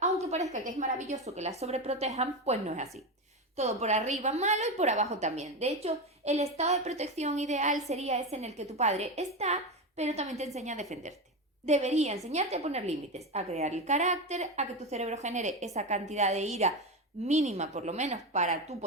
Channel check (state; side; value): normal; both; correlation 0.17